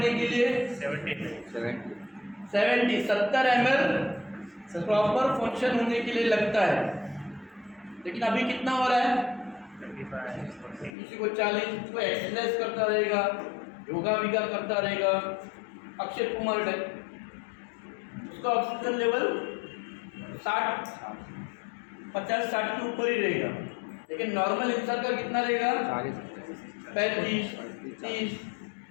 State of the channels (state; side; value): drops out; right; at 11.0 s